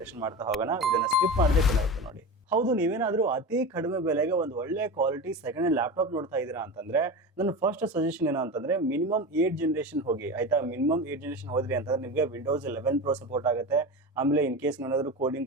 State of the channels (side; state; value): both; normal; correlation 0.26